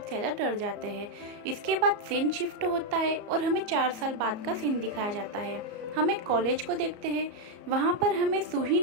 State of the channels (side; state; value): left; late; 34 ms